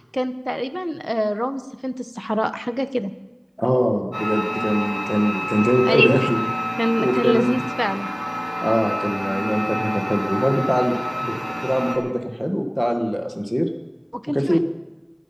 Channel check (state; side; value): identical; both; correlation 1.00